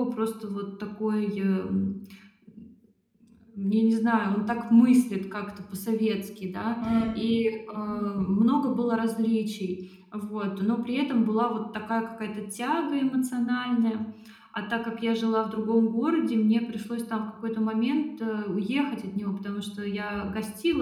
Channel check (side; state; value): both; identical; correlation 1.00